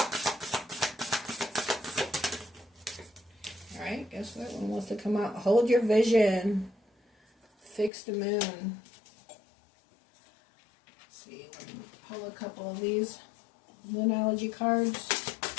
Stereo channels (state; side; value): drops out; right; at 7.9 s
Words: Alright, guess what? One wants to come out. Hold your vision. Fix the moon. Let's see, let me pull a couple of these Moonology cards.